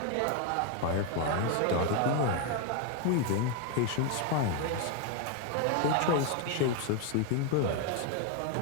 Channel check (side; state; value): both; different; correlation 0.01